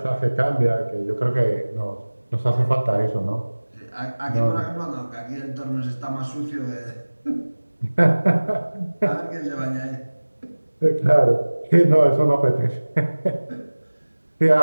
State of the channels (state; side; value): inverted; both; correlation -1.00